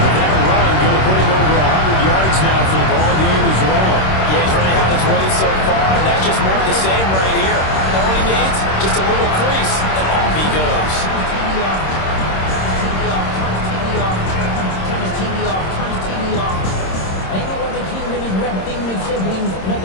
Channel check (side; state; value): right; late; 26 ms